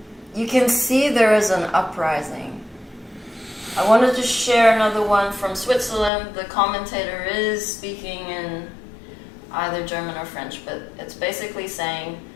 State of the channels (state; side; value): drops out; right; at 6.1 s